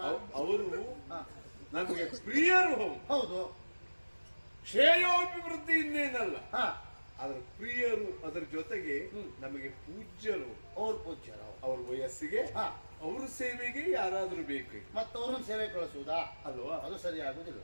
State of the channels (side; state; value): both; inverted; correlation -1.00